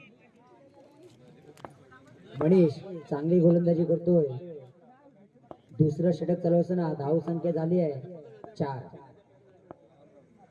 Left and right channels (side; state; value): both; identical; correlation 1.00